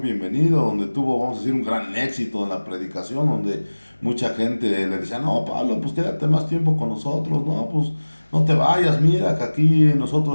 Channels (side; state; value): both; inverted; correlation -1.00